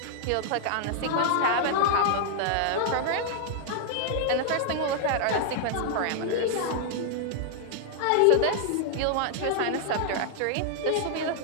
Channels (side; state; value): both; different; correlation 0.00